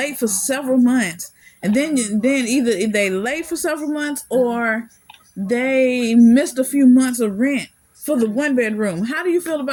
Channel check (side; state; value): both; identical; correlation 1.00